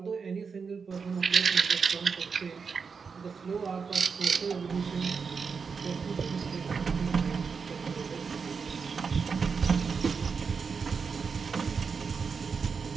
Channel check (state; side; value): quieter; left; 5.5 dB